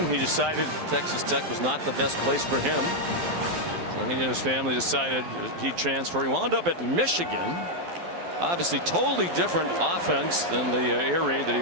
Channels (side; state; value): left; late; 12 ms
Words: He decided Texas Tech was not the best place for him. So he and his family decided he'd transfer. He wound up at Michigan. Obviously totally different offense than the air raid that he